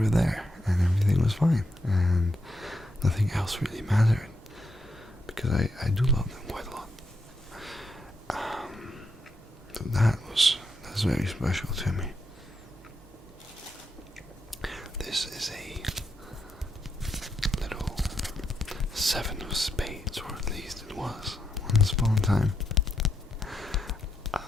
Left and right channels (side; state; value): both; normal; correlation 0.81